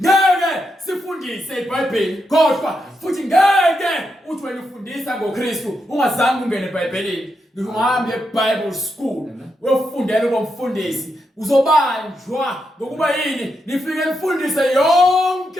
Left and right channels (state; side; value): normal; both; correlation 0.84